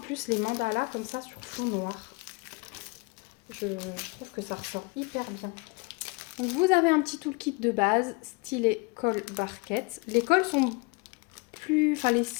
les mandalas comme ça sur fond noir. Je trouve que ça ressort hyper bien. Donc vous avez un petit toolkit de base, stylet colle barquette. Les colles sont plus... Enfin les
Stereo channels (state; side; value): quieter; right; 28.6 dB